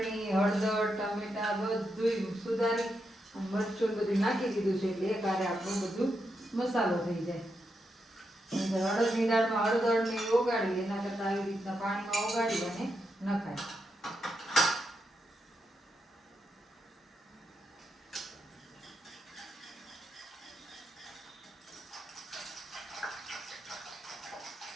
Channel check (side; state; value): both; normal; correlation 0.84